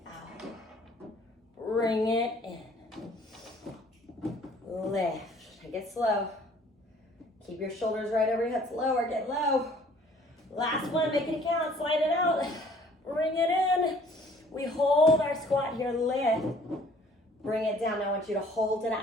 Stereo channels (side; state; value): both; normal; correlation 0.55